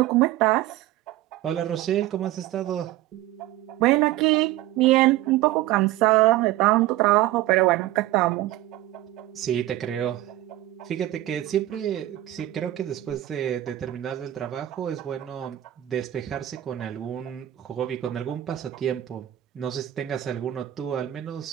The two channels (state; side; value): quieter; left; 14.9 dB